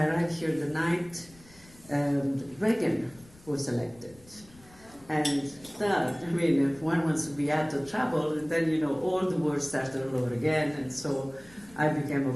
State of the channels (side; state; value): left; noise; rumble, 25 dB below the sound